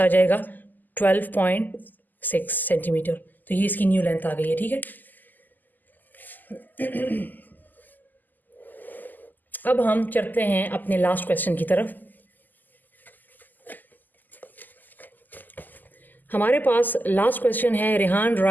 जाएगा 12.6 सेंटीमीटर। तो ये इसकी न्यू लेंथ आ गई है। ठीक है, अब हम चलते हैं अपने लास्ट क्वेश्चन की तरफ। हमारे पास लास्ट क्वेश्चन है, Rehan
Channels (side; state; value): right; late; 0.086 ms